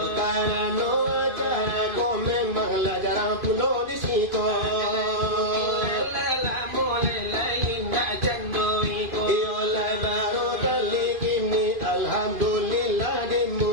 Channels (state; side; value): late; left; 2.5 ms